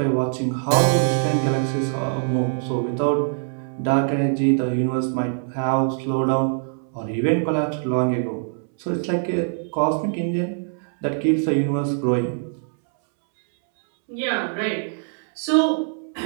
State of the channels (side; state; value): left; silent; 63 dB below the other